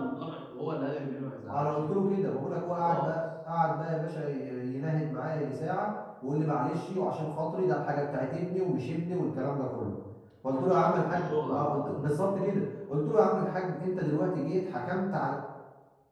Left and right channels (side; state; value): both; identical; correlation 1.00